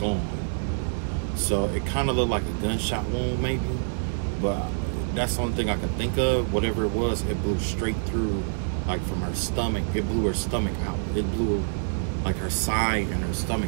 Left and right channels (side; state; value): left; silent; 58 dB below the other